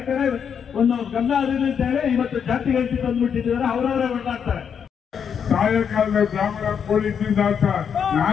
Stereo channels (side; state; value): right; quieter; 7.4 dB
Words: ಕಡೆ ಒಂದು ಗಮನ ಹರಿಲಿ ಅಂತ ಹೇಳಿ ಇವತ್ತು ಜಾತಿಗೆ ಅಂತ ತಂದ್ಬಿಟ್ಟಿದ್ದಾರೆ. ಅವರವರೇ ಹೊರಟಾಡ್ತಾರೆ. ಸಾಯಂಕಾಲದ ಬ್ರಾಹ್ಮಣ ಪೊಲೀಸಿಂದ ಅಂತ